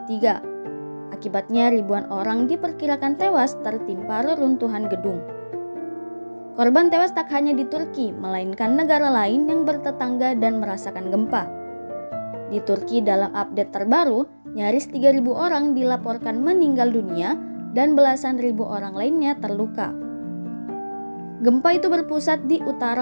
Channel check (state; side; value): inverted; both; correlation -1.00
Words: Akibatnya ribuan orang diperkirakan tewas tertimpa reruntuhan gedung. Korban tewas tak hanya di Turki, melainkan negara lain yang bertetangga dan merasakan gempa. Di Turki dalam update terbaru, nyaris 3.000 orang dilaporkan meninggal dunia dan belasan ribu orang lainnya terluka. Gempa itu berpusat di